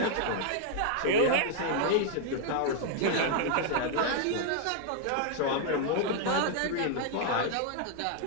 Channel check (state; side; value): different; both; correlation 0.00